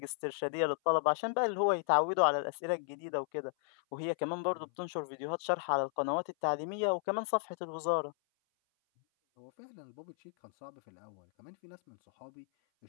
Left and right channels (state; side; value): silent; right; 55 dB below the other